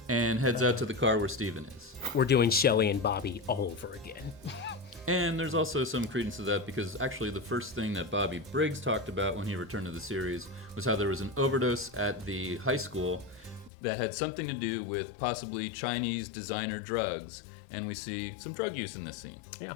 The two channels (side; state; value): right; drops out; at 13.7 s